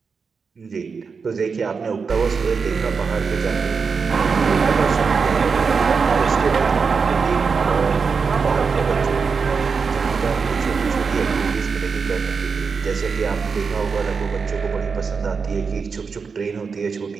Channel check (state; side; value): quieter; left; 5.3 dB